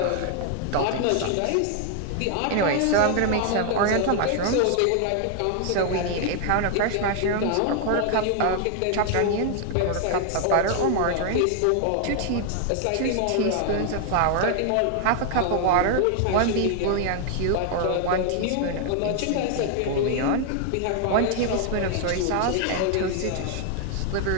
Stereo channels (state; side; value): different; both; correlation 0.00